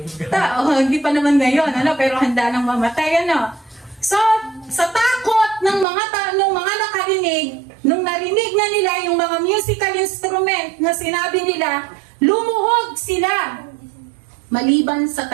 Hindi pa naman ngayon, pero handa nang mamatay, So, sa takot ng mga nakarinig, nung narinig na nila yung mga musical instrument na sinabi nila, lumuhod sila. Maliban sa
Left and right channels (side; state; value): left; drops out; at 5.9 s